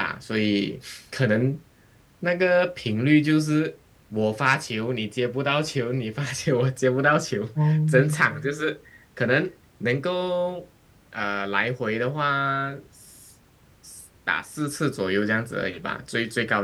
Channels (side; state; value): both; identical; correlation 1.00